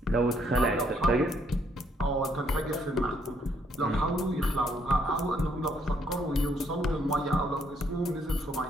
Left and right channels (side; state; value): both; normal; correlation 0.70